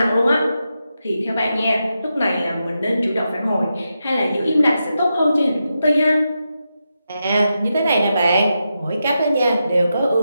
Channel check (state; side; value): inverted; both; correlation -0.87